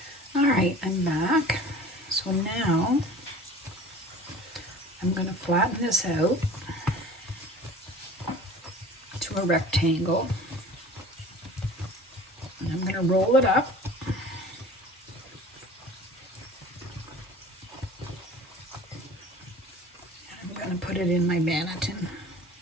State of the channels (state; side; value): normal; both; correlation 0.43